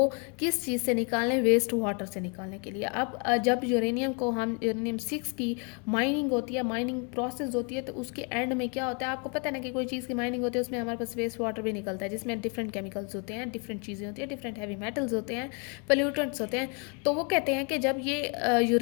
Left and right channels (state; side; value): quieter; right; 36.0 dB